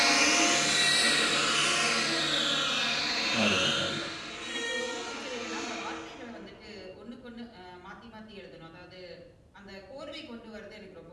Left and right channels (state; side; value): identical; both; correlation 1.00